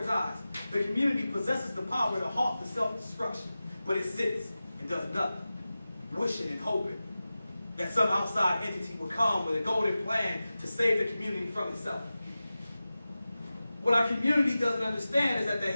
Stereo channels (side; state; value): both; inverted; correlation -0.95